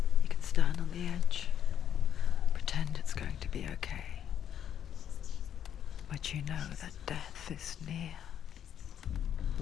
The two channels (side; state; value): right; quieter; 9.5 dB